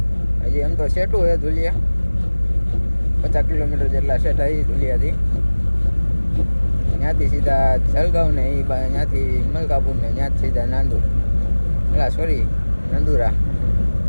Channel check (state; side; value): inverted; both; correlation -1.00